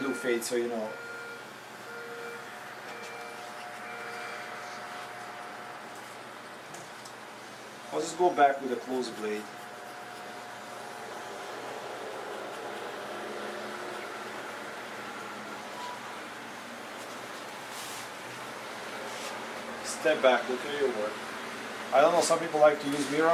do fade, so you know. I'll just go back with a closed blade. Step back, look at your work. I don't know, some people like to use mirror.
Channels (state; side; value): identical; both; correlation 1.00